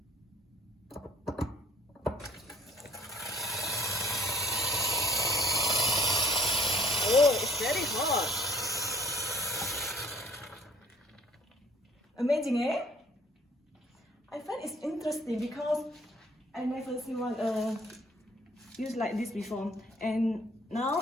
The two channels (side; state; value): both; normal; correlation 0.55